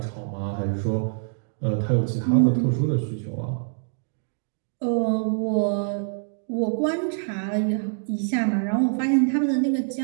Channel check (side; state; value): left; silent; digital silence